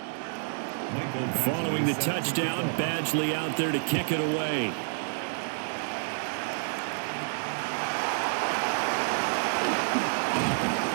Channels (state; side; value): silent; left; digital silence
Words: Following the touchdown, Badgley out there to kick it away.